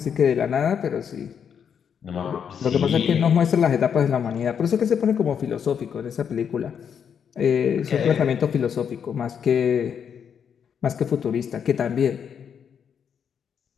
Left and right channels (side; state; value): right; quieter; 7.6 dB